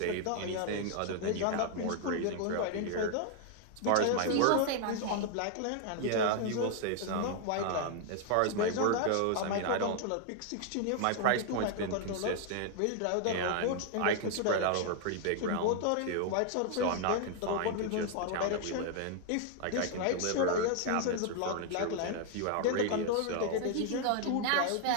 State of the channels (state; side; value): different; both; correlation 0.00